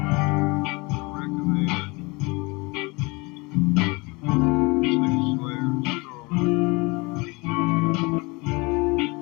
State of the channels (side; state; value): right; quieter; 26.4 dB